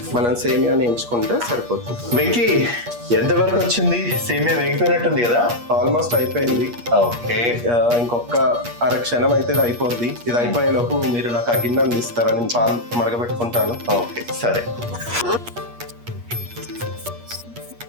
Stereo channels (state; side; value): late; left; 8.4 ms